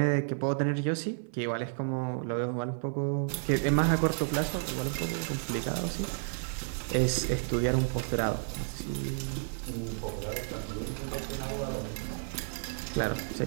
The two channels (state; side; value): silent; left; 57 dB below the other